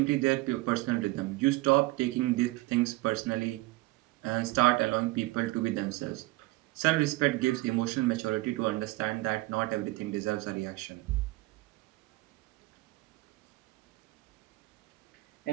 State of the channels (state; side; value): quieter; left; 20.7 dB